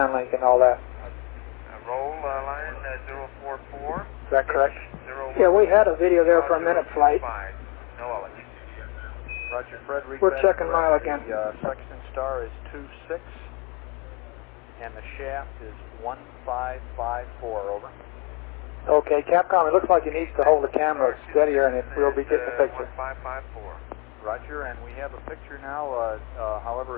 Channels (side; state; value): right; quieter; 29.8 dB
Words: and all that. Roll line 044. Is that correct? 01. Yeah, we had a video there for a minute, Flight. No knowledge. Roger, Fred, read We're back checking mile correct. again. The sextant star is 26, and the shaft is 1554, over. Okay, Capcom, it looks like he needs to hold the camera steadier and we'll be getting the picture. 1554. Roger, and we have a picture now,